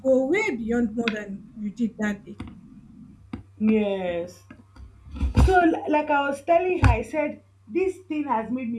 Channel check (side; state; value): both; identical; correlation 1.00